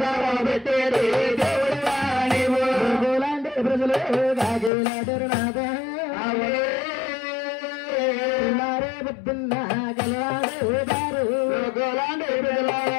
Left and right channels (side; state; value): right; drops out; at 4.7 s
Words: పెట్టేడు దేవుడు లాంటి ప్రజలు కాగేలాడరు నాద పొద్దున్న గలవాడు గోలాంటి ప్రజలు